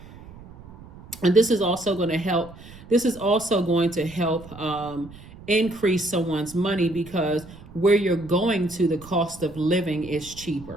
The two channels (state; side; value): noise; right; rumble, 18 dB below the sound